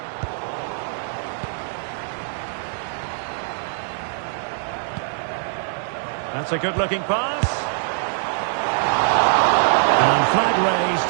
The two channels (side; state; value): left; silent; digital silence